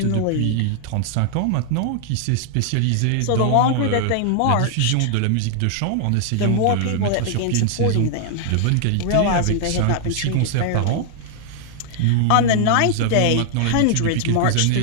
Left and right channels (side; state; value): both; different; correlation 0.00